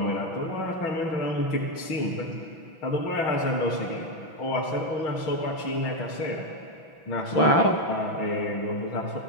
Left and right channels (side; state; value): right; late; 6.1 ms